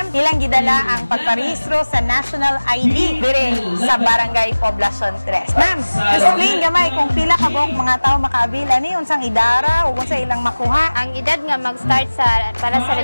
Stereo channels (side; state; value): both; inverted; correlation -1.00